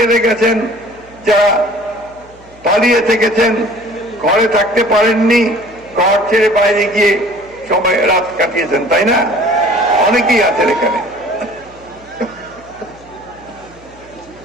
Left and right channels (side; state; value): left; noise; hum, 25 dB below the sound